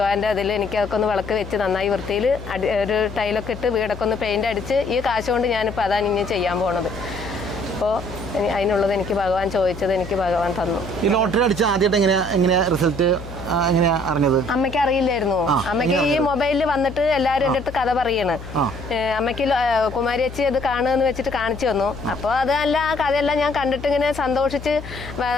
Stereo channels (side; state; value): left; noise; hum, 12 dB below the sound